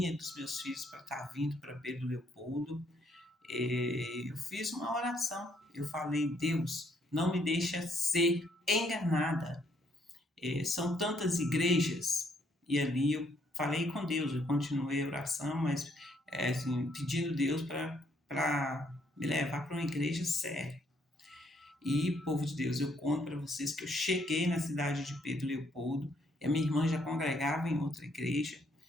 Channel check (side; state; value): both; normal; correlation 0.70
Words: e dos meus filhos para estar vindo para Pedro Leopoldo, eu fiz uma oração. Eu falei: Deus, não me deixa ser enganada. São tantas igrejas, e ali eu falei com Deus, eu continuei a oração, mas assim, pedindo Deus para me levar para uma igreja séria. E, povo de Deus, eu conto para vocês que eu cheguei na cidade de Pedro Leopoldo, e a minha irmã já congregava em outra igreja,